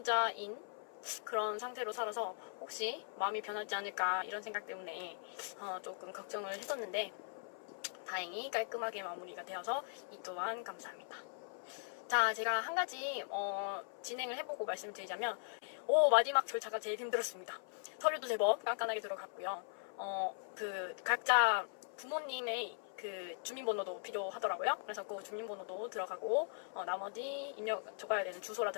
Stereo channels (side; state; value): right; silent; 51 dB below the other